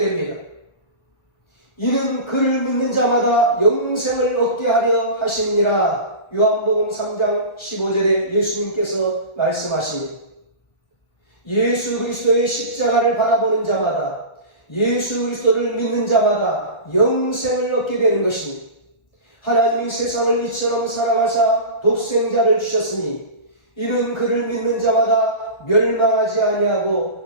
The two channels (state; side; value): late; right; 1.4 ms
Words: 이는 그를 믿는 자마다 영생을 얻게 하려 하심이니라. 요한복음 3장 15절에 예수님께서 말씀하십니다. 예수 그리스도의 십자가를 바라보는 자마다, 예수 그리스도를 믿는 자마다 영생을 얻게 되는 것입니다. 하나님이 세상을 이처럼 사랑하사 독생자를 주셨으니 이는 그를 믿는 자마다 멸망하지